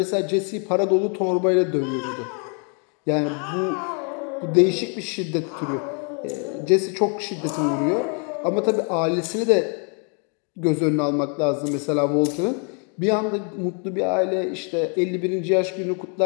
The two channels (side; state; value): right; quieter; 39.6 dB